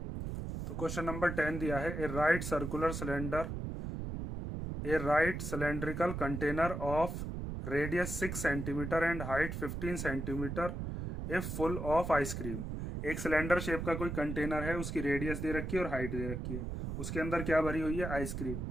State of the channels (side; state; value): right; noise; rumble, 4 dB below the sound